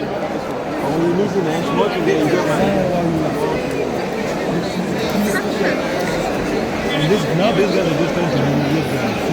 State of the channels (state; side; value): identical; both; correlation 1.00